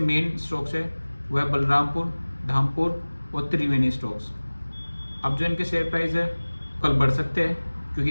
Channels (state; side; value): inverted; both; correlation -1.00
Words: मेन स्टॉक्स है वो है बलरामपुर, धामपुर और त्रिवेणी स्टॉक्स। अब जो इनके शेयर प्राइस है कल बढ़ सकते हैं